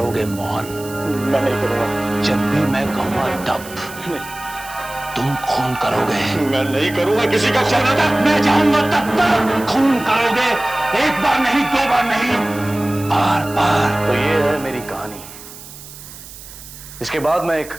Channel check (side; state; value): right; noise; hiss, 16 dB below the sound